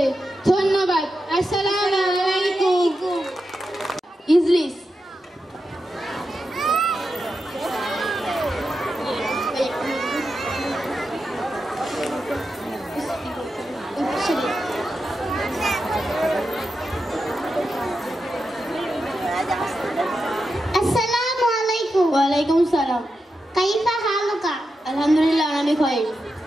ধন্যবাদ। আসসালামু আলাইকুম। ইজলিস। আসসালামু আলাইকুম। ওয়ালাইকুম সালাম। কাইফা হালুকা? আলহামদুলিল্লাহ, আমি খাই।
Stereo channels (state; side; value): normal; both; correlation 0.89